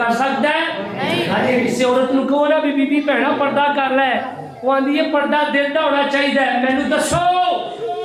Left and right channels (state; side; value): identical; both; correlation 1.00